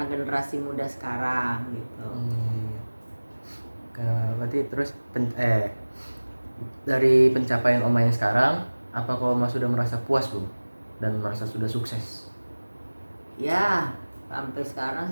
generasi muda sekarang gitu. Berarti terus dari pencapaian Oma yang sekarang, apakah Oma sudah merasa puas belum dan merasa sudah sukses? Ya, sampai sekarang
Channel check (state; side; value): inverted; both; correlation -1.00